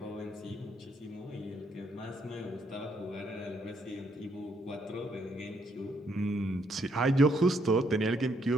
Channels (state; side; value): normal; both; correlation 0.72